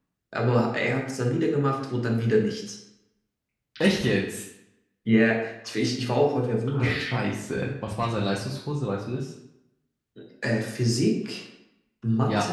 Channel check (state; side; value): identical; both; correlation 1.00